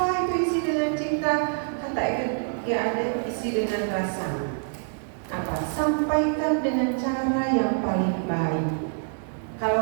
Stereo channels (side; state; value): left; silent; digital silence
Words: itu isi dengan cinta? Kata ya ada isi dengan rasa. Apa? Sampaikan dengan cara yang paling baik.